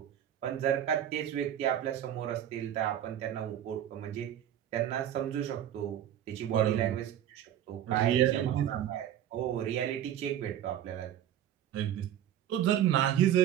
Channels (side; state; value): left; quieter; 10.9 dB